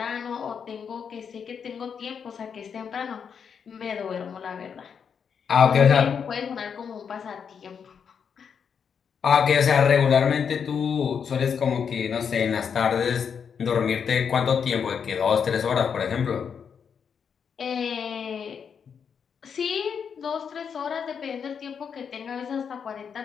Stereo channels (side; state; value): right; quieter; 6.9 dB